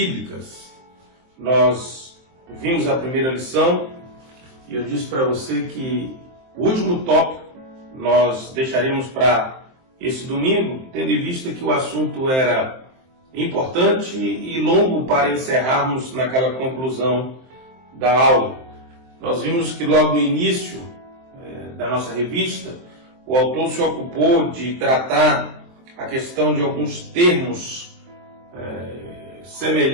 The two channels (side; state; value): left; late; 23 ms